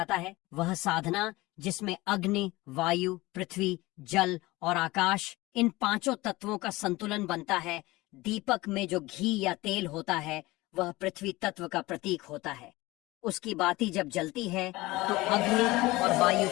है। वह साधना जिसमें अग्नि, वायु, पृथ्वी, जल और आकाश, इन पांचों तत्वों का संतुलन बनता है। दीपक में जो घी या तेल होता है वह पृथ्वी तत्व का प्रतीक होता है। उसकी बाती जब जलती है तो अग्नि और वायु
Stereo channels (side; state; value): right; quieter; 20.4 dB